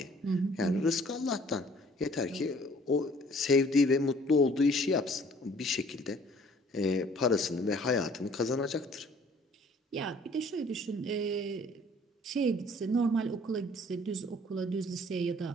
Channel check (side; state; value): both; normal; correlation 0.56